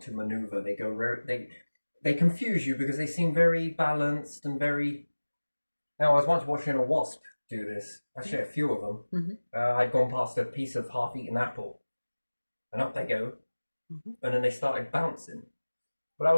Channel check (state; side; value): inverted; both; correlation -1.00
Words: to maneuver. They confuse you because they seem very balanced and very... Now, I was once watching a wasp do this. Actually, a few of them. I'd gone past a piece of half-eaten apple. And up they go. And then they started bouncing. But I